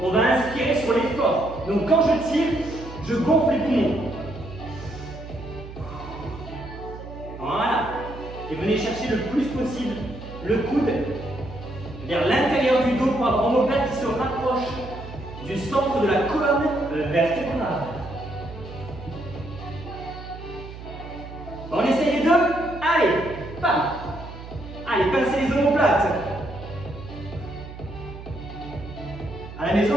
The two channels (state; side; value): noise; right; hum, 13 dB below the sound